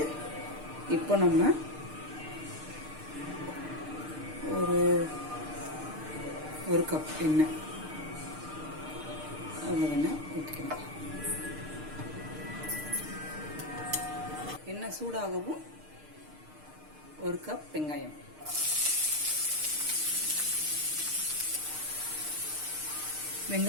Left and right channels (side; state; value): left; late; 6.6 ms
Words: இப்போ நம்ம ஒரு கப் எண்ணெய் ஊற்றிக்கணும். எண்ணெய் சூடாகவும் ஒரு கப் வெங்காயம்,